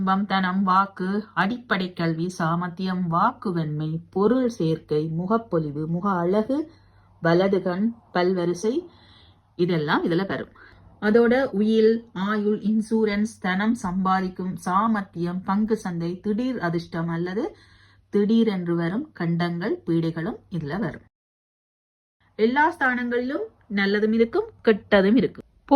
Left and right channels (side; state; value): both; identical; correlation 1.00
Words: தனம், வாக்கு, அடிப்படை கல்வி, சாமர்த்தியம், வாக்கு வெண்மை, பொருள் சேர்க்கை, முகப்பொலிவு, முக அழகு, வலதுகண், பல்வரிசை, இதெல்லாம் இதுல வரும். அதோட உயில், ஆயுள், இன்சூரன்ஸ், தனம் சம்பாதிக்கும் சாமர்த்தியம், பங்கு சந்தை, திடீர் அதிர்ஷ்டம் அல்லது திடீரென்று வரும் கண்டங்கள், பீடைகளும் இதுல வரும். எல்லா ஸ்தானங்களிலும் நல்லதும் இருக்கும், கெட்டதும் இருக்கும்.